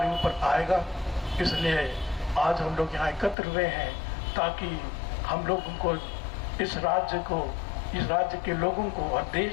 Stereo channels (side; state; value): right; drops out; at 3.4 s